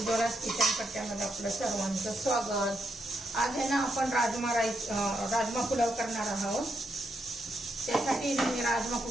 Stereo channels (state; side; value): normal; both; correlation 0.81